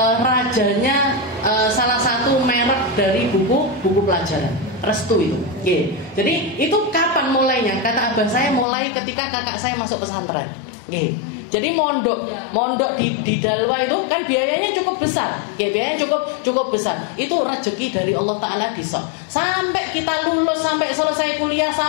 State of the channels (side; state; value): right; drops out; at 8.7 s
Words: rajanya salah satu merek dari buku pelajaran Restu itu. Jadi itu kapan mulainya? Kata abah saya mulai ketika kakak saya masuk pesantren. Jadi mondok di Dalwa itu kan biayanya cukup besar. Biayanya cukup besar. Itu rezeki dari Allah Taala disok. Sampai kita lulus, sampai selesai kuliah,